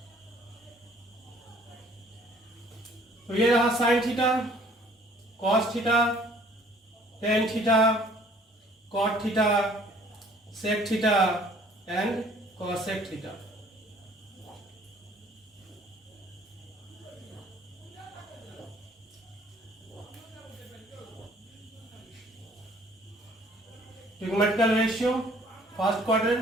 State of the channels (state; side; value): normal; both; correlation 0.56